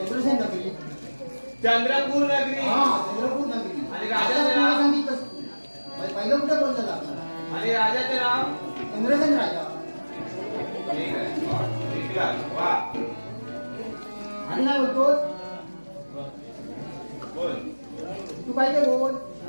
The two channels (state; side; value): inverted; both; correlation -1.00